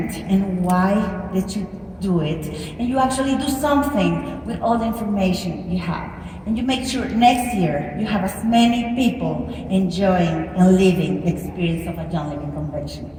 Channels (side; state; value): both; identical; correlation 1.00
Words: and why did you do it, and you actually do something with all the information you have. And you make sure next year you have as many people enjoying and living the experience of a Young Living Convention.